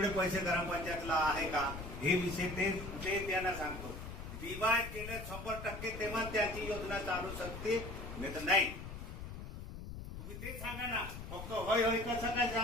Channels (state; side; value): noise; left; rumble, 9 dB below the sound